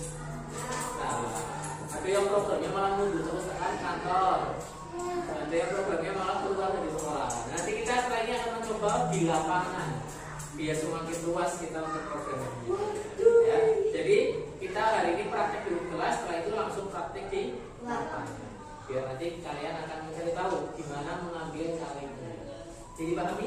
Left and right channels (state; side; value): identical; both; correlation 1.00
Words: salah. Ada yang programnya malah mundur terus ke kantor. Ada yang programnya malah keluar dari sekolah. Nanti kita setelah ini akan mencoba di lapangan biar semakin luas kita untuk programnya. Ya, jadi kita hari ini praktek di kelas, setelah itu langsung praktek di lapangan. Biar nanti kalian akan mencari tahu gimana mengambil kalengnya. Jadi